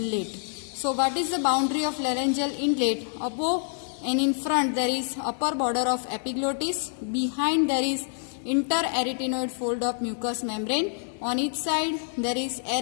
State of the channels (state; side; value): silent; right; digital silence